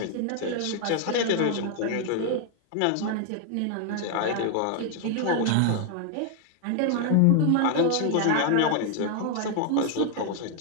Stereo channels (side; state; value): both; different; correlation 0.00